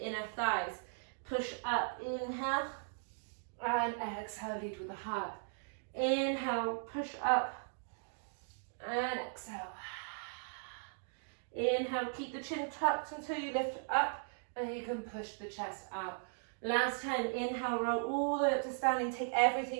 inner thighs. Push up. Inhale. And exhale, lead with the heart. Inhale, push up. And exhale. Inhale, keep the chin tucked until you lift up and you can push the chest out. Last time, inhale, roll all the way up to standing. Take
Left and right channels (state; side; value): silent; left; digital silence